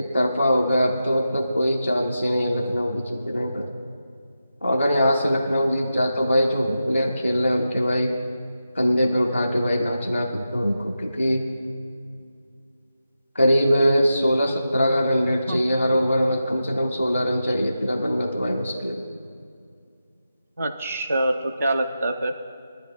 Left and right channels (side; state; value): both; inverted; correlation -0.90